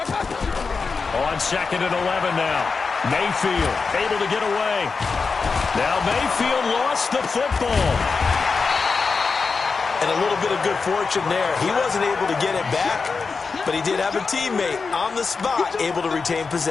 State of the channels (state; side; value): quieter; right; 4.7 dB